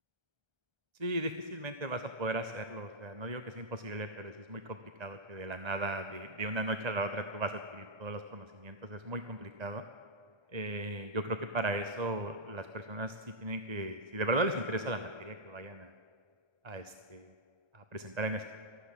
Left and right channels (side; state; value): left; late; 1.3 ms